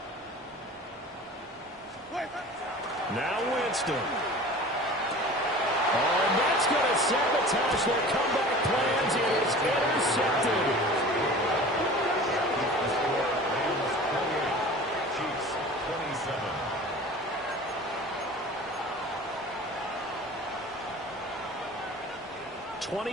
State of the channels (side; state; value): both; normal; correlation 0.40